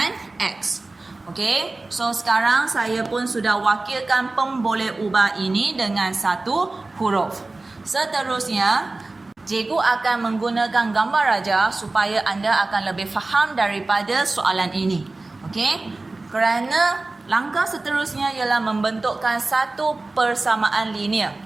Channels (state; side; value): quieter; left; 3.2 dB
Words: X. Okey, so sekarang saya pun sudah wakilkan pemboleh ubah ini dengan satu huruf. Seterusnya, cikgu akan menggunakan gambar raja supaya anda akan lebih faham daripada soalan ini. Okey, kerana langkah seterusnya ialah membentukkan satu persamaan linear.